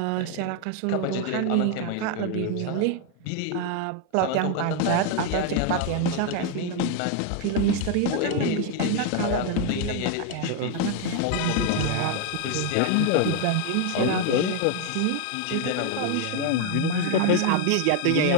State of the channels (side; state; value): both; different; correlation 0.01